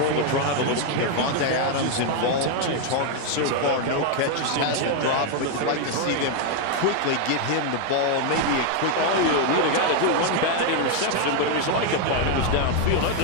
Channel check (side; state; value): both; different; correlation 0.01